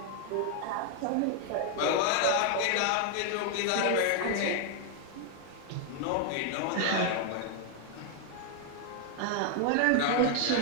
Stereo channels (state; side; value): different; both; correlation 0.00